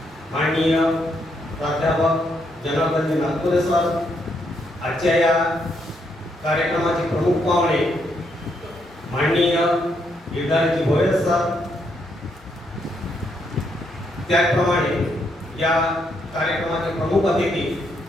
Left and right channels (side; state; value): both; normal; correlation 0.76